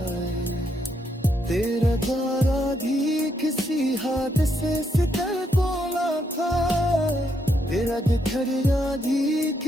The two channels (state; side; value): normal; both; correlation 0.77